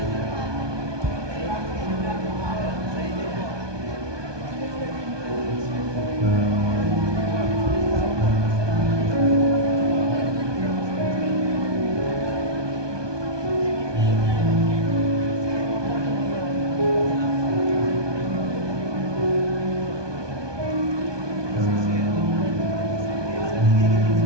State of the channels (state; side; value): late; left; 1.2 ms